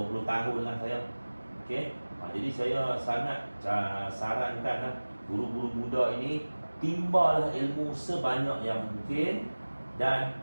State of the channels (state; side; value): inverted; both; correlation -1.00